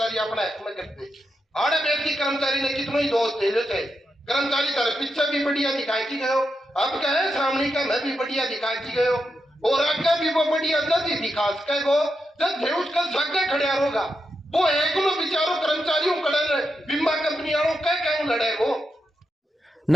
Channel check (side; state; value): both; normal; correlation 0.86